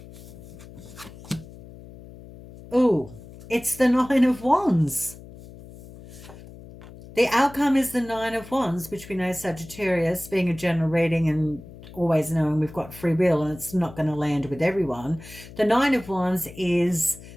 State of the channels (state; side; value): noise; left; hum, 17 dB below the sound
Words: Oh, it's the Nine of Wands. The outcome is the Nine of Wands, which we know Sagittarius, being a general reading and always knowing we've got free will and it's not going to land with everyone. The Nine of Wands is